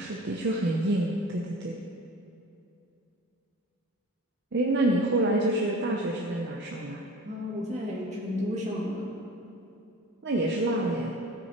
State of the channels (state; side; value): normal; both; correlation 0.40